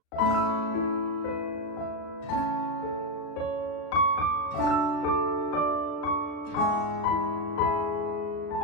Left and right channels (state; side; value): late; right; 38 ms